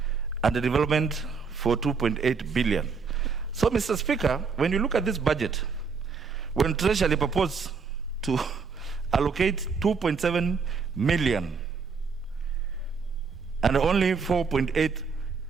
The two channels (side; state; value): left; quieter; 5.3 dB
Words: and a development for 2.8 billion. So, Mr. Speaker, when you look at this budget, when Treasury proposed to allocate 2.7 million and only 4.8